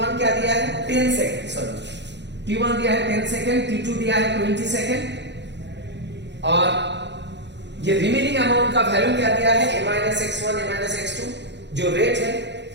क्या दिया है 10 सेकेंड, सॉरी T1 दिया है 10 सेकेंड, T2 दिया है 20 सेकेंड, और ये रिमेनिंग अमाउंट का वैल्यू क्या दिया है A minus x1 A minus x2, जो रेट है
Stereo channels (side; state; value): left; late; 0.51 ms